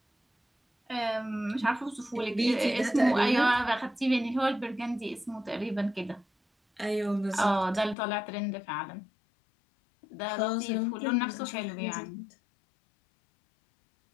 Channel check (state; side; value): drops out; right; at 8.0 s